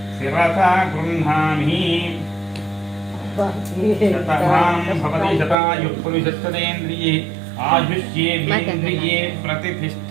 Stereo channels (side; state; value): left; drops out; at 5.6 s